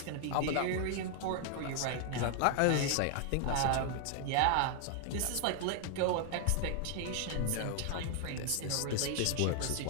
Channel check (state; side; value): different; both; correlation 0.00